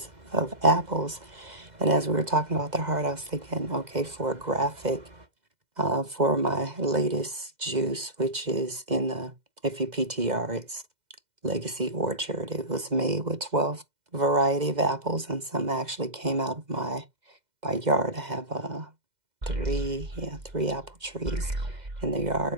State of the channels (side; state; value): left; late; 2.0 ms